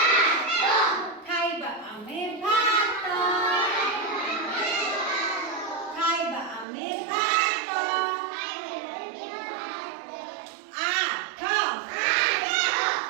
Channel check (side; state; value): left; drops out; at 6.7 s